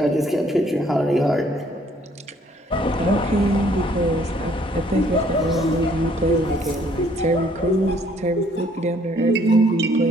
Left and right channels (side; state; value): both; normal; correlation 0.63